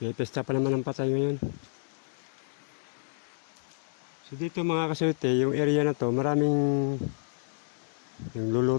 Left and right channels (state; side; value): silent; right; 56 dB below the other